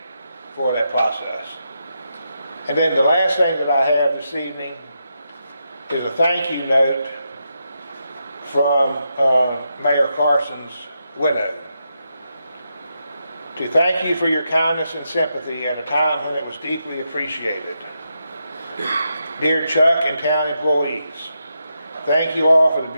for that process. And then the last thing that I have this evening is a thank you note from Mayor Carson's widow. To thank you for your kindness and sympathy at a time when it was deeply appreciated. Dear Chuck and town employees, thank you all for the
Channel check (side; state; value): both; inverted; correlation -0.84